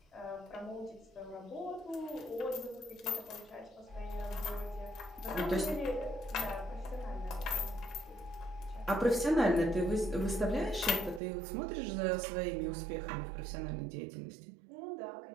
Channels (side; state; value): left; drops out; at 11.2 s